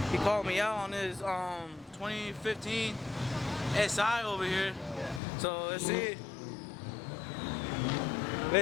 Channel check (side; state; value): right; drops out; at 5.2 s